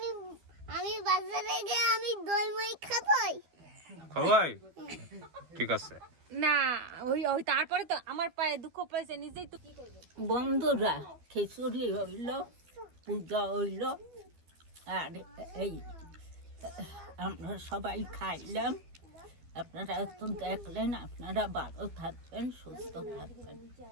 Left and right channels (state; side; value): late; left; 12 ms